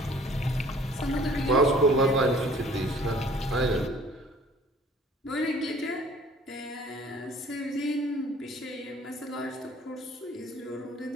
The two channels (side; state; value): both; normal; correlation 0.54